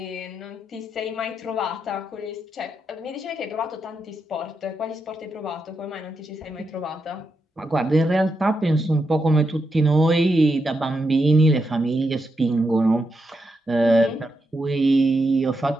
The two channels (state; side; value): normal; both; correlation 0.84